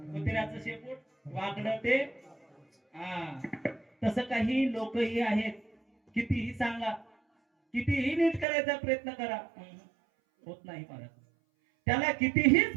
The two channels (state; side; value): drops out; left; at 8.5 s